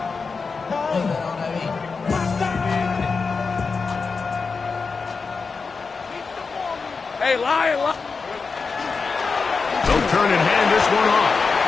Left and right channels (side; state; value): right; quieter; 4.8 dB